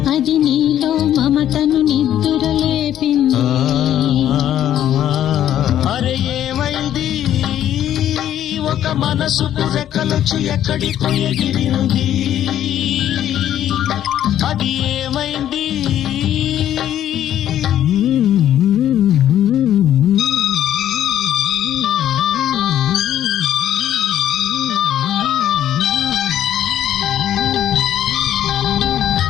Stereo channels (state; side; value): quieter; right; 11.3 dB